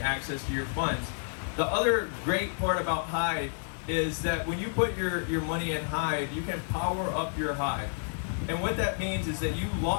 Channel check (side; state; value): right; silent; digital silence